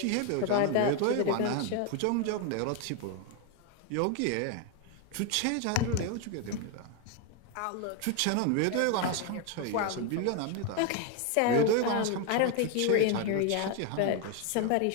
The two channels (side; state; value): both; different; correlation 0.01